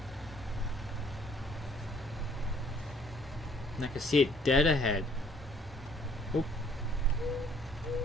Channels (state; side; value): normal; both; correlation 0.61